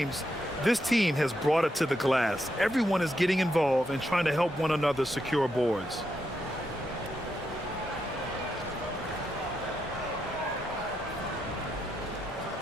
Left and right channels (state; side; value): normal; both; correlation 0.82